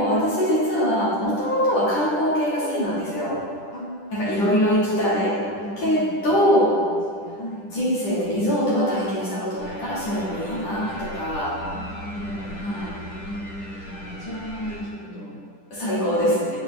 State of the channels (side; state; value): right; late; 10 ms